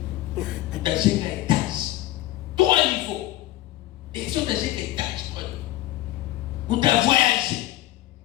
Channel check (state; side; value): quieter; right; 15.7 dB